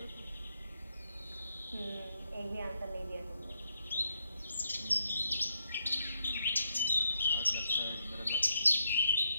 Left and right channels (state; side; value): inverted; both; correlation -0.78